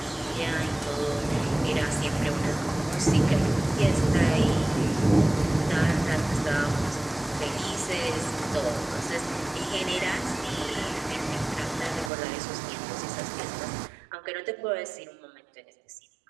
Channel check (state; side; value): drops out; left; at 12.1 s